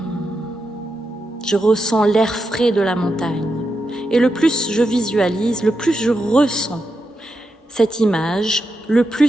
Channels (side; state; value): both; normal; correlation 0.86